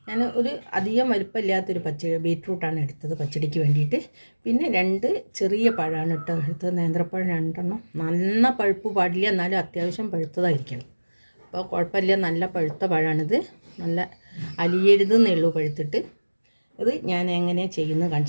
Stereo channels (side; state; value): both; inverted; correlation -1.00